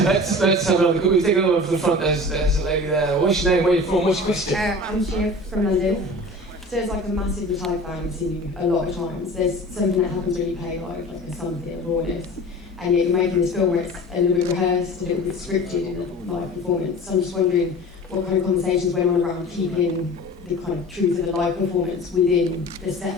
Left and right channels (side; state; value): both; normal; correlation 0.39